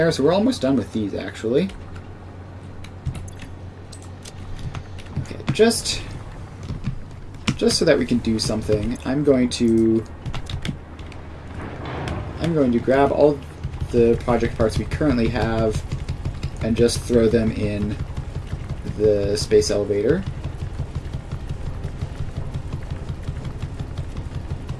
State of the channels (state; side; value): identical; both; correlation 1.00